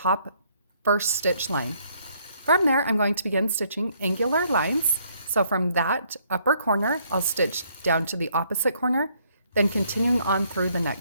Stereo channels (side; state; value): both; inverted; correlation -0.68